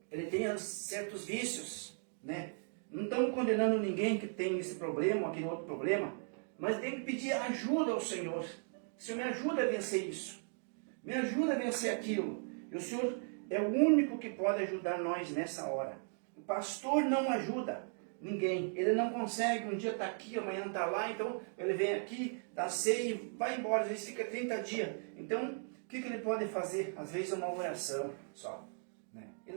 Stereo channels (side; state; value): left; silent; 53 dB below the other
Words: ele tem certos vícios, né? Não estamos condenando ninguém que tem esse problema, aquele outro problema, mas tem que pedir ajuda ao Senhor. Senhor, me ajuda a vencer isso, me ajuda a vencer aquilo. E o Senhor é o único que pode ajudar nós nessa hora. O pastor não ajuda ninguém, ele não consegue, um dia está aqui, amanhã está lá, então ele vem aqui, dá ceia e vai embora, às vezes fica 30 dias. Então, o que ele pode fazer? Às vezes é uma oração só, né? Ele